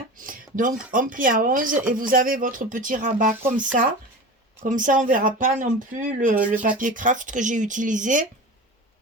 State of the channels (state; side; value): normal; both; correlation 0.32